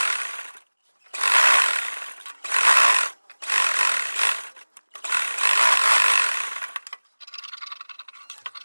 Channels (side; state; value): both; inverted; correlation -1.00